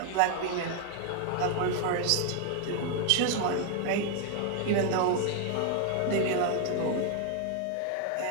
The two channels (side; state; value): both; different; correlation 0.00